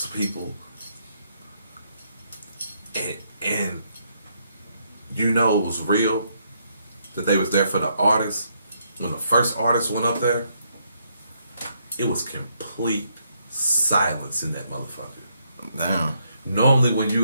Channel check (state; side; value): inverted; both; correlation -0.74